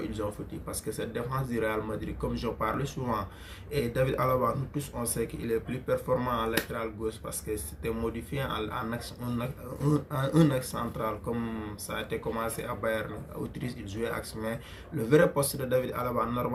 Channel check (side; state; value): both; identical; correlation 1.00